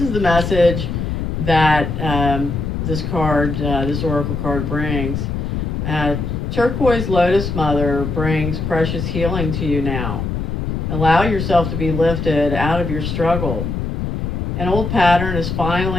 is the message that this oracle card brings. Turquoise Lotus Mother brings precious healing to you now. Allow yourself to be lifted out of your struggle. An old pattern is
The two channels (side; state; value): left; noise; rumble, 3 dB below the sound